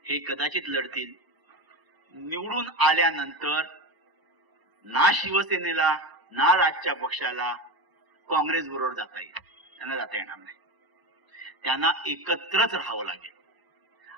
हे कदाचित लढतील. निवडून आल्यानंतर ना शिवसेनेला ना राजच्या पक्षाला काँग्रेस बरोबर जाता येईल, त्यांना जाता येणार नाही. त्यांना एकत्रच राहावं लागेल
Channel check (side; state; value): left; late; 1.0 ms